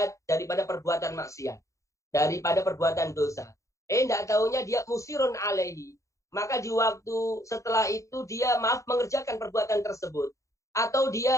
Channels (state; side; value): late; right; 0.15 ms